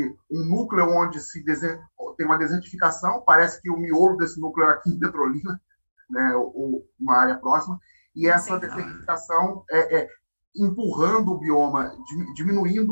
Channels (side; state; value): both; inverted; correlation -1.00